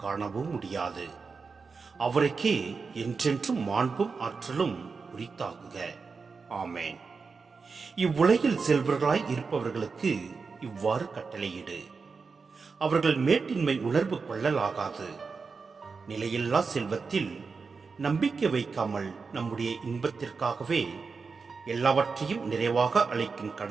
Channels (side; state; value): left; quieter; 4.8 dB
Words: காணவும் முடியாது. அவருக்கே என்றென்றும் மாண்பும் ஆற்றலும் உரித்தாகுக. ஆமேன். இவ்வுலகில் செல்வர்களாய் இருப்பவர்களுக்கு இவ்வாறு கட்டளையிடு. அவர்கள் மேட்டின்மை உணர்வு கொள்ளலாகாது. நிலையில்லா செல்வத்தில் நம்பிக்கை வைக்காமல் நம்முடைய இன்பத்திற்காகவே எல்லாவற்றையும் நிறைவாக அளிக்கும்